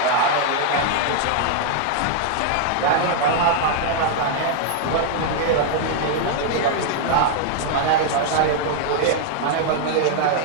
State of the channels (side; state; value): both; different; correlation 0.00